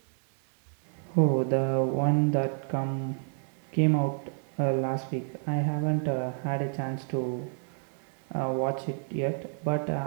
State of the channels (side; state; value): left; silent; digital silence